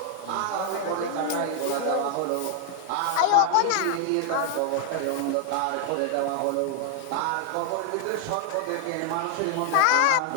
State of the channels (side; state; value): both; different; correlation 0.00